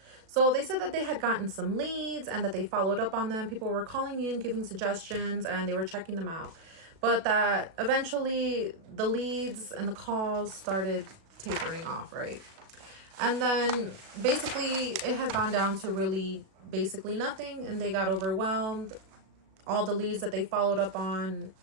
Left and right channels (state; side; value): late; left; 36 ms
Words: So they said that they had gotten some leads and that they followed up on them. People were calling in, giving suggestions, and they were checking them out. But that eventually the leads and the calls started tapering off, right? And then basically it has gone down to really basically nothing, and they got overwhelmed. All the leads that they followed up on,